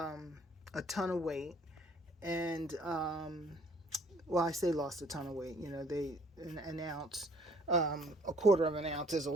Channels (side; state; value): both; normal; correlation 0.59